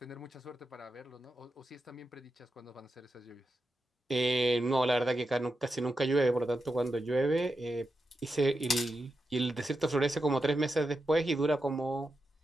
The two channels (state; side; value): normal; both; correlation 0.88